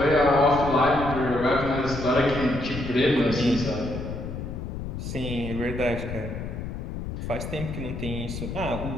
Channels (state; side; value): noise; left; rumble, 6 dB below the sound